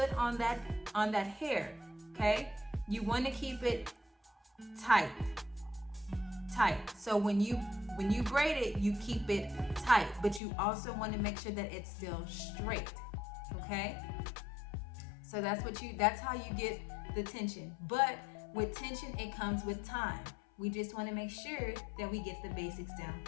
on that hair, okay, you want to keep it tight. So when you braid it, you keep it tight, but you also want to make sure that it's still straight. Okay? So that's how you get the tension. But with tension, it comes with time. We just want to make sure that we get the basics down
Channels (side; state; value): right; drops out; at 10.4 s